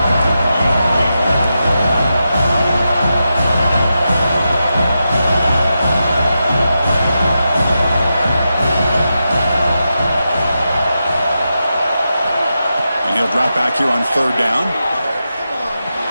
Drop back here on third down.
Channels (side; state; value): both; inverted; correlation -0.88